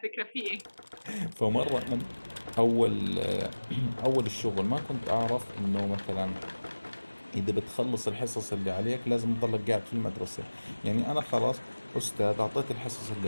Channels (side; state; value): both; inverted; correlation -1.00